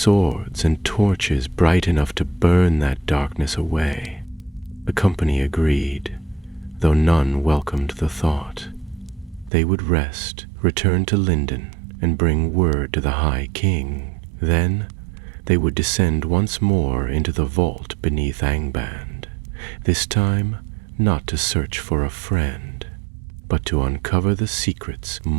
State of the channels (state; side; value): drops out; left; at 9.5 s